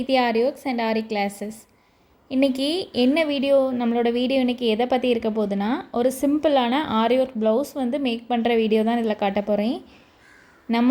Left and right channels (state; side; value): identical; both; correlation 1.00